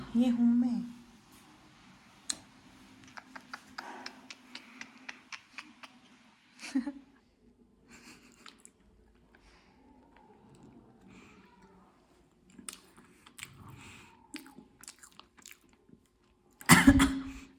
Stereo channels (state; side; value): identical; both; correlation 1.00